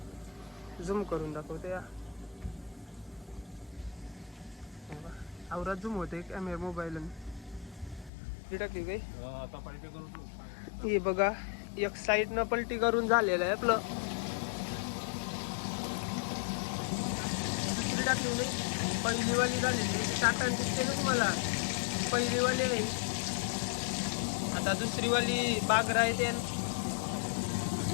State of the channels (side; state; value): right; drops out; at 8.1 s